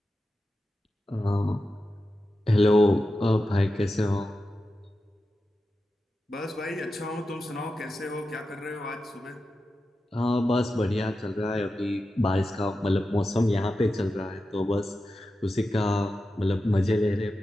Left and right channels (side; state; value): both; normal; correlation 0.91